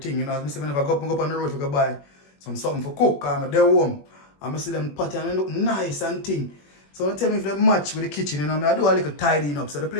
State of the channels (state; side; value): late; right; 21 ms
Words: You know, as I say, whenever I go up on the road to buy something for cook. I'm there home. I'm see them pot and they look nice and thing. So don't tell me if they match with the kitchen, you know. I do a little tidying up. So the